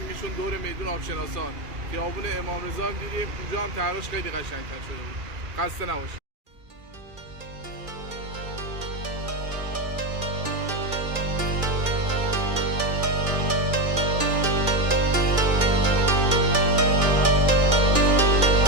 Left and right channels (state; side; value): late; left; 2.4 ms